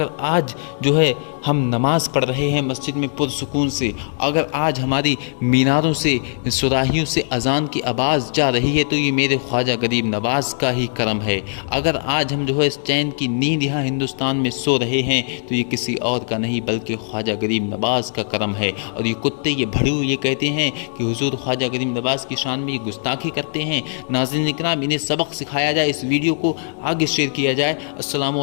آج جو ہے ہم نماز پڑھ رہے ہیں مسجد میں پرسکون سے، اگر آج ہماری میناروں سے سراہیوں سے اذان کی آواز جا رہی ہے تو یہ میرے خواجہ غریب نواز کا ہی کرم ہے۔ اگر آج ہم جو ہے اس چین کی نیند یہاں ہندوستان میں سو رہے ہیں تو یہ کسی اور کا نہیں بلکہ خواجہ غریب نواز کا کرم ہے۔ اور یہ کتے، یہ بھڑو یہ کہتے ہیں کہ حضور خواجہ غریب نواز کی شان میں یہ گستاخی کرتے ہیں۔ ناظرین اکرام، انہیں سبق سکھایا جائے، اس ویڈیو کو آگے شیئر کیا جائے۔ السلام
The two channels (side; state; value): right; silent; digital silence